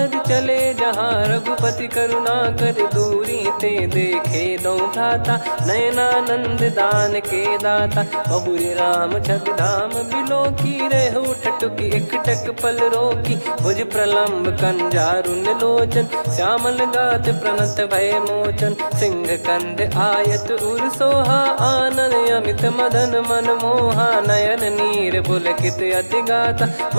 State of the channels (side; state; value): both; inverted; correlation -1.00